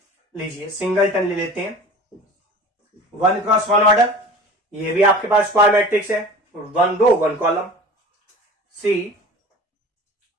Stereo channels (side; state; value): both; normal; correlation 0.40